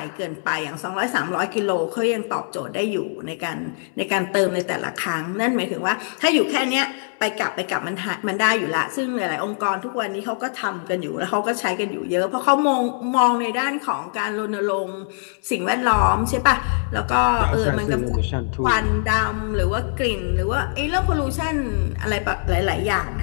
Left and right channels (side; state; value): right; silent; digital silence